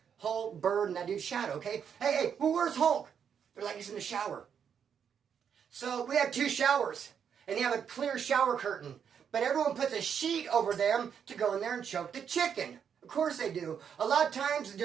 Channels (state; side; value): quieter; left; 7.7 dB